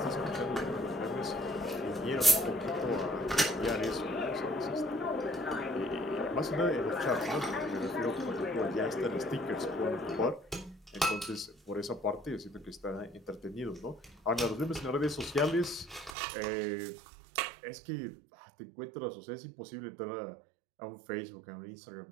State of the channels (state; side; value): drops out; left; at 16.2 s